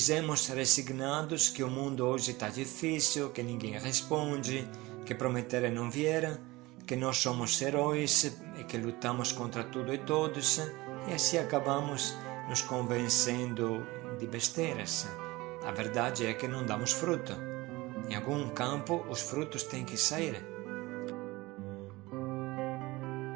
resignados que o mundo hoje está difícil, que ninguém responde, que prometeram não vieram, que nós somos heróis e que lutamos contra tudo e todos, e assim acabamos nos convencendo de besteiras. A verdade é que não damos fruto. Em algum campo os frutos têm que sair.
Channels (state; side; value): quieter; left; 21.0 dB